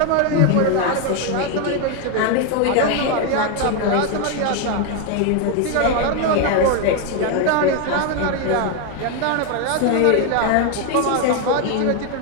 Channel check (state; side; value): different; both; correlation 0.01